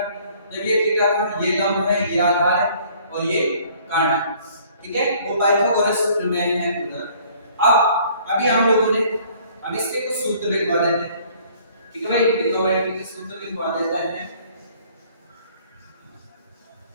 जब ये थीटा था, ये लंब है, ये आधार है और ये कर्ण है, ठीक है, वो पाइथागोरस सूत्र में है उधर। अब अभी हम लोगों ने, अब इसके कुछ सूत्र लिखवा देते हैं, ठीक है भाई, ट्रिग्नोमेट्री के सूत्र लिखवा देते हैं।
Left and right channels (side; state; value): both; inverted; correlation -0.57